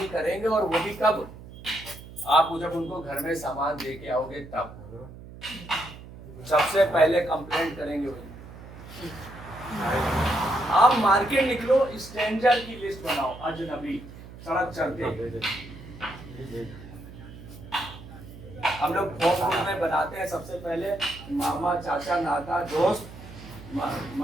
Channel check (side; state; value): right; noise; hum, 16 dB below the sound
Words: करेंगे, और वो भी कब? आप जब उनको घर में सामान दे के आओगे तब सबसे पहले कंप्लेंट करेंगे वही। आप मार्केट निकलो, स्ट्रेंजर की लिस्ट बनाओ, अजनबी सड़क चलते हम लोग फोन में बनाते हैं। सबसे पहले मामा, चाचा, नाता, दोस्त।